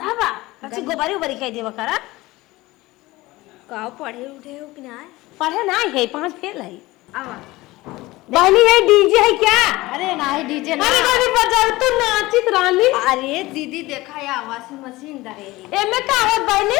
बा अच्छी गोबरी उबरी कह देवा करा का पढ़े उठे हो कि ना पढ़े ना है 5 फेल है आवा बहनी है डीजे है क्या अरे नहीं डीजे अरे बड़ी बजाओ तो नाचित रानी अरे दीदी देखा या वॉशिंग मशीन रहेगी एमे का होत बहनी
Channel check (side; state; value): right; quieter; 19.6 dB